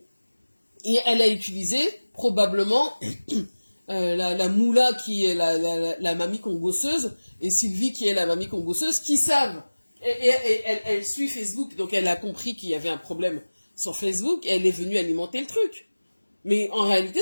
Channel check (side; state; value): both; inverted; correlation -1.00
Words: Et elle a utilisé probablement la Moula qui est la mamie congosseuse et Sylvie qui est la mamie congosseuse qui savent. Et elle suit Facebook, donc elle a compris qu'il y avait un problème sur Facebook et elle est venue alimenter le truc. Mais en